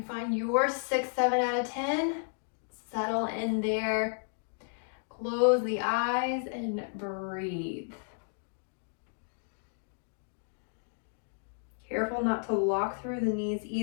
find your 6, 7 out of 10, settle in there, close the eyes and breathe. Careful not to lock through the knees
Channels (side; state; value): right; silent; digital silence